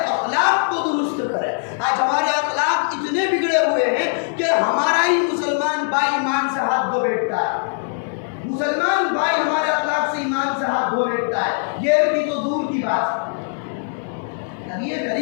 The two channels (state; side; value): silent; right; 65 dB below the other